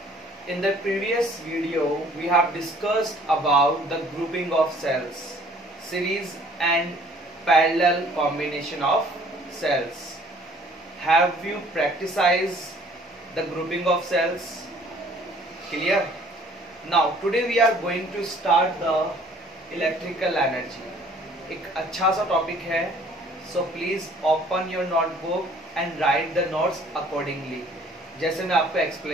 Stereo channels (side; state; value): both; normal; correlation 0.56